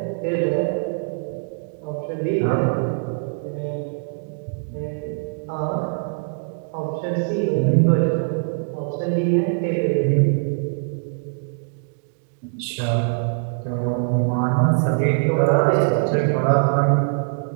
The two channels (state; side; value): silent; left; digital silence